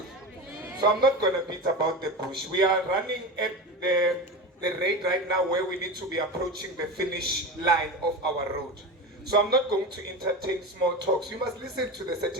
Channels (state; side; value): normal; both; correlation 0.24